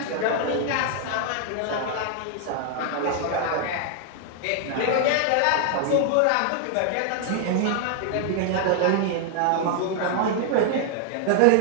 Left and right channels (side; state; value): both; different; correlation 0.00